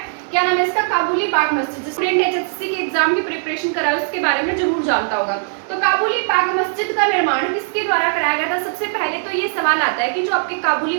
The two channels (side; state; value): left; silent; digital silence